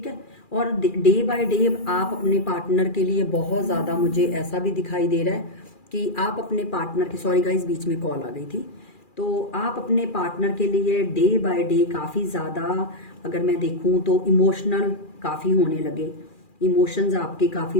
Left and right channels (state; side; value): late; right; 2.4 ms